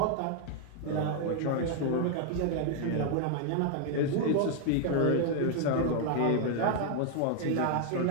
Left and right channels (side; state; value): both; different; correlation 0.00